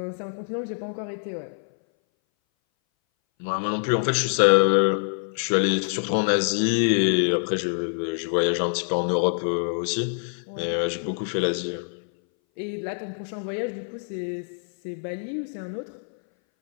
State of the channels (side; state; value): right; silent; 60 dB below the other